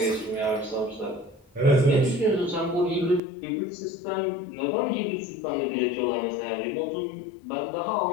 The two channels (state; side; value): drops out; right; at 3.2 s